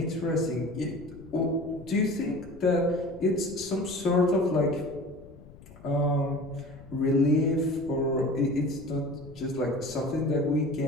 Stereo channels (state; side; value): noise; left; rumble, 20 dB below the sound